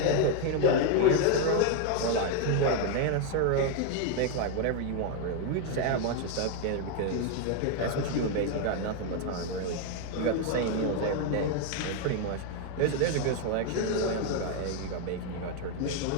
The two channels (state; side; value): different; both; correlation 0.01